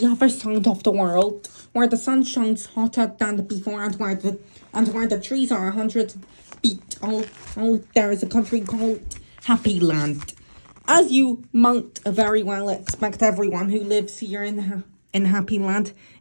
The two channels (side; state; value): both; inverted; correlation -1.00